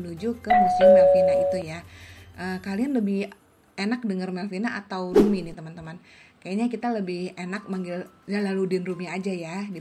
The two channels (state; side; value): identical; both; correlation 1.00